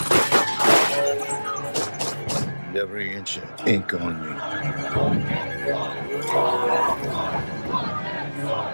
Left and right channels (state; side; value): inverted; both; correlation -1.00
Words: And every inch of ink on you.